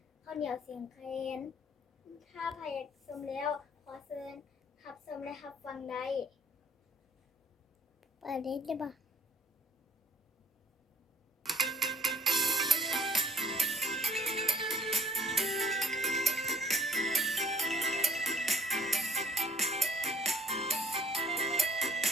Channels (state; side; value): normal; both; correlation 0.60